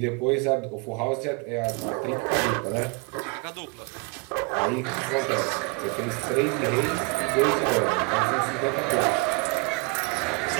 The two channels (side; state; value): left; quieter; 29.8 dB